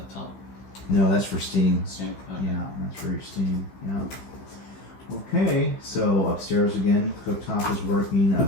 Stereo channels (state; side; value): late; right; 15 ms